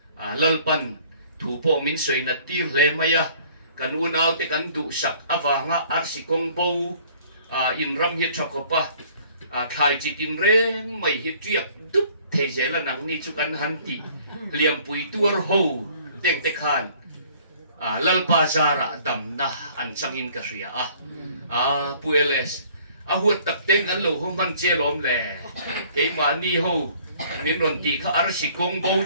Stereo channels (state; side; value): inverted; both; correlation -0.56